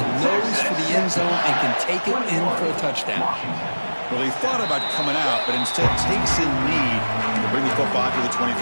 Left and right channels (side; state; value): both; inverted; correlation -1.00